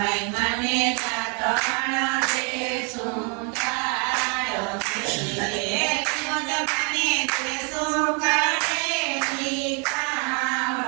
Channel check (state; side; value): quieter; left; 35.7 dB